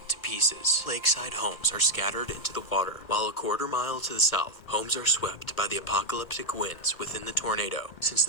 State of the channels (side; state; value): right; late; 2.1 ms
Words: to pieces. Lakeside homes are scattered into the water, while a quarter mile to the south, homes are swept by the apocalyptic winds within the tornado. Since